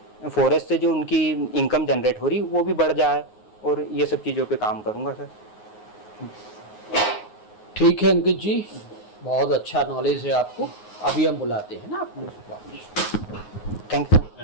फॉरेस्ट से जो उनकी इनकम जनरेट हो रही वो भी बढ़ जाए, और ये सब चीज़ों पे काम करूँगा सर। ठीक है अंकित जी, बहुत अच्छा नॉलेज है आपको। अभी हम बुलाते हैं ना आपको। Thank you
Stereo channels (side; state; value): right; late; 9.5 ms